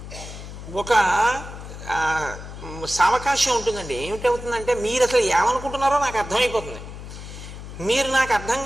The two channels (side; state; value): left; noise; hum, 12 dB below the sound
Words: ఒక సావకాశం ఉంటుందండి. ఏమిటవుతుందంటే, మీరు అసలు ఏమనుకుంటున్నారో నాకు అర్థమైపోతుంది. మీరు నాకు అర్థం